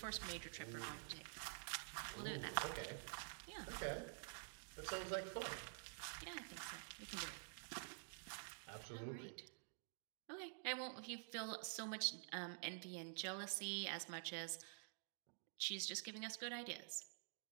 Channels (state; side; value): silent; left; digital silence